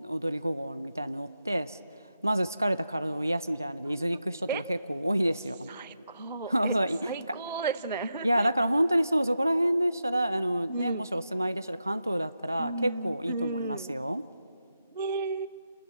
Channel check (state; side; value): inverted; both; correlation -0.87